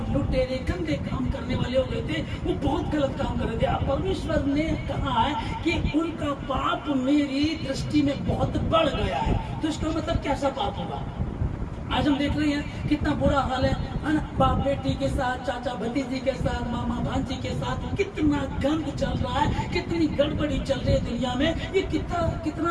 लुटेरे गंदे काम करने वाले हो गए थे, वो बहुत गलत काम कर रहे थे। अब परमेश्वर ने कहा है कि उनका पाप मेरी दृष्टि में बहुत बढ़ गया है। तो इसका मतलब कैसा पाप होगा? आज हम देख रहे हैं कितना बुरा हाल है ना, बाप बेटी के साथ, चाचा भतीजी के साथ, मामा भांजी के साथ कितना गंद चल रहा है, कितनी गड़बड़ी चल रही है दुनिया में, ये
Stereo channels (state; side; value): identical; both; correlation 1.00